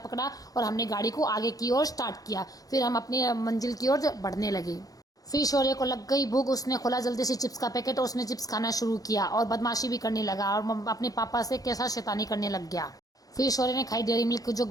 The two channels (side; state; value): right; late; 0.17 ms